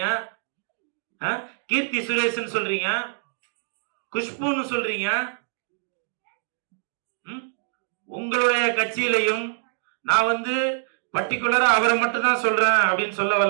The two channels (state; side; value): silent; left; digital silence